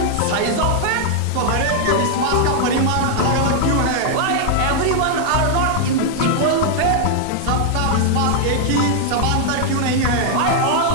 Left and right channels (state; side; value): different; both; correlation 0.00